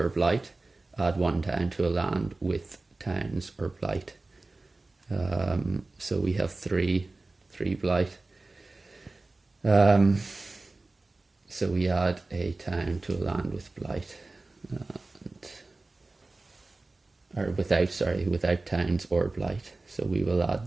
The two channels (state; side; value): quieter; left; 3.3 dB